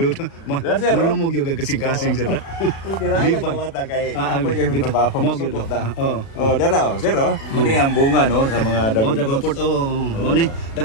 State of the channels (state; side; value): late; right; 36 ms